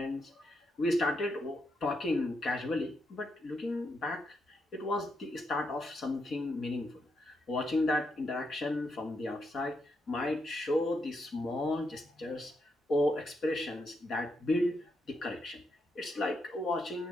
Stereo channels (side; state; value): both; normal; correlation 0.81